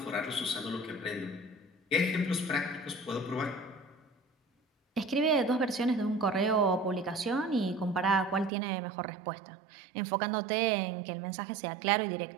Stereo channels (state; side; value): drops out; left; at 8.5 s